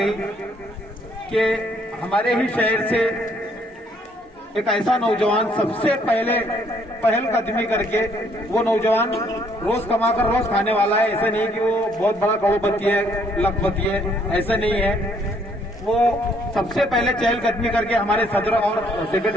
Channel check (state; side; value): normal; both; correlation 0.66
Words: कि हमारे ही शहर से एक ऐसा नौजवान सबसे पहले पहल कदमी करके, वो नौजवान रोज कमाकर रोज खाने वाला है, ऐसा नहीं कि वो बहुत बड़ा करोड़पति है, लखपति है, ऐसा नहीं है। वो सबसे पहले चहलकदमी करके हमारे सदर और